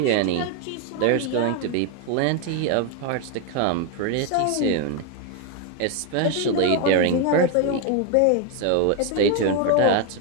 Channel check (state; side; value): different; both; correlation 0.01